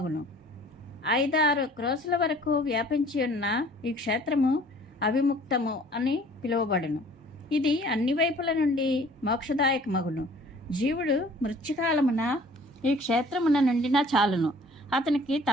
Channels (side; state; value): both; normal; correlation 0.52